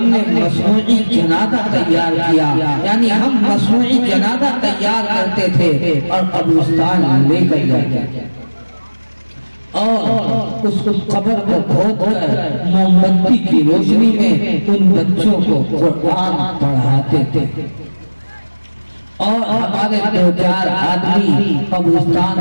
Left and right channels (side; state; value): both; inverted; correlation -1.00